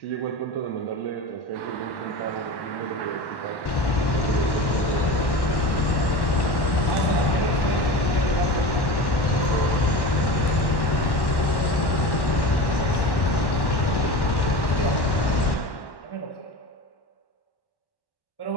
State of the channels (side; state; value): right; late; 1.1 ms